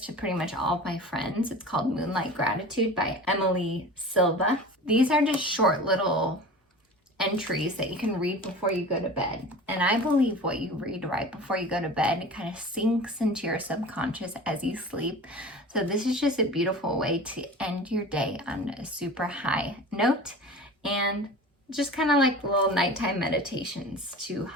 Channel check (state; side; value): normal; both; correlation 0.37